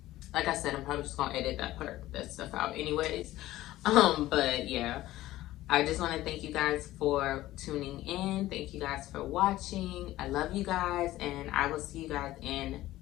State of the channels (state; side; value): quieter; right; 15.8 dB